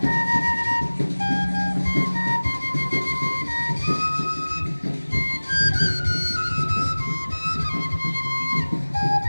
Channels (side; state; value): both; inverted; correlation -1.00